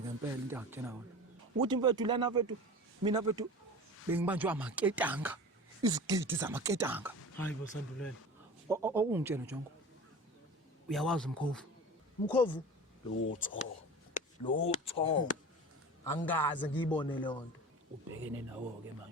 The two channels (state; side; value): normal; both; correlation 0.36